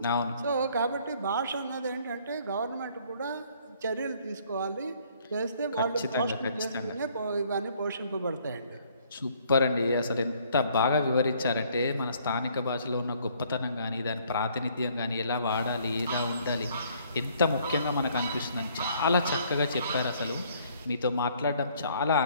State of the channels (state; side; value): inverted; both; correlation -0.62